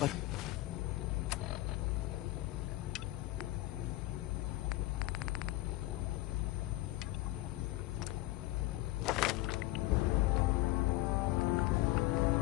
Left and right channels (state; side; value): quieter; right; 17.9 dB